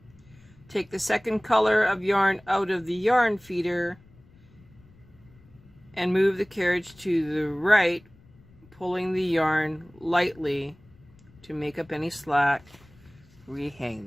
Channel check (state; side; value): noise; left; rumble, 27 dB below the sound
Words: Take the second color of yarn out of the yarn feeder and move the carriage to the right, pulling the yarn lightly to make up any slack. Rehang